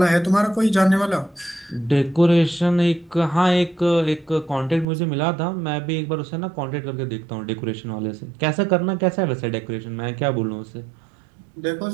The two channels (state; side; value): drops out; left; at 4.9 s